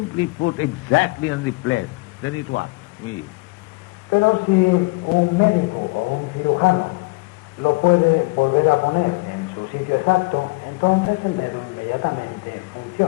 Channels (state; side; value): quieter; right; 25.6 dB